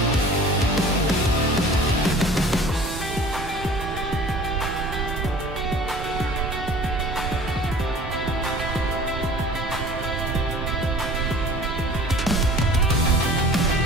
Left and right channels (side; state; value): both; normal; correlation 0.46